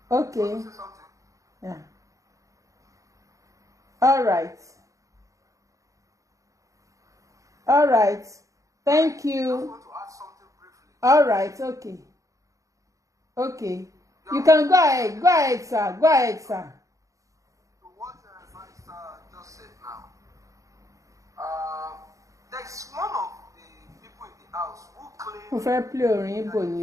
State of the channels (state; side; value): late; left; 0.16 ms